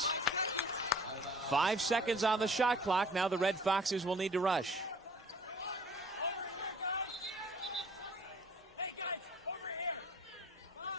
5 seconds on the shot clock. Now the Red Foxes will need to rush.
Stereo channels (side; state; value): both; normal; correlation 0.51